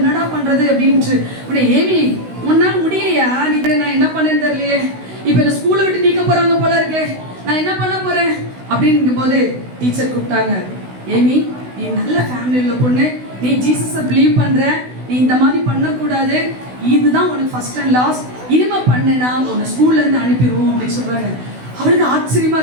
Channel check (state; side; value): late; left; 16 ms